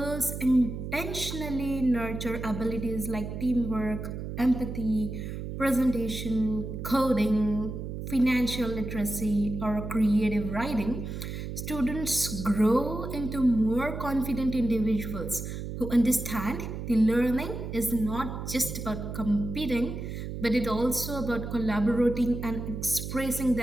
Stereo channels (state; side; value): noise; right; hum, 6 dB below the sound